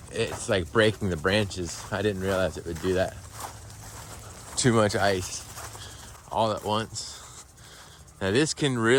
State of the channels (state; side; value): identical; both; correlation 1.00